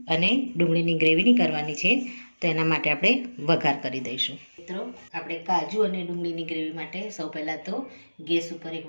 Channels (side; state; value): both; inverted; correlation -1.00